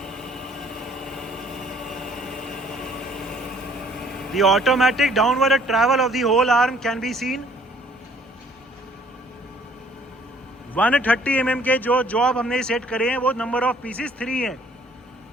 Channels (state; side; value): normal; both; correlation 0.59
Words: The automatic downward travel of the whole arm can be seen. 130 mm के जो जॉब हमने सेट करे हैं वो नंबर ऑफ पीसेस 3 हैं।